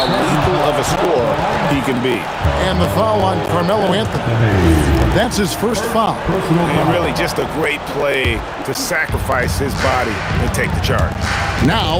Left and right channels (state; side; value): identical; both; correlation 1.00